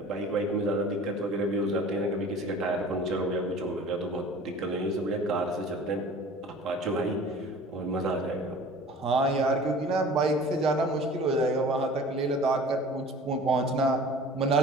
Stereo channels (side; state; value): both; normal; correlation 0.44